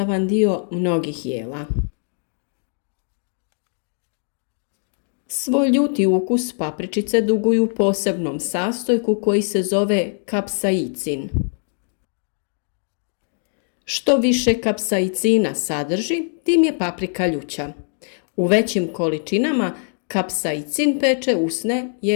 dio mnogih jela. Svoj ljuti ukus papričice duguju posebnom sastojku koji se zove kapsaicin. Što više kapsaicina sadrži, tim je paprika ljuća. U većim količinama kapsaicin peče usne,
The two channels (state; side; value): silent; right; 55 dB below the other